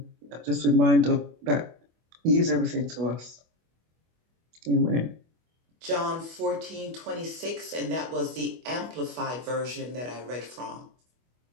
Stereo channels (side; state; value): left; late; 25 ms